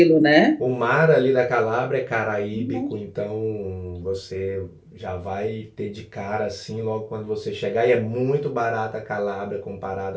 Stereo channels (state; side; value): identical; both; correlation 1.00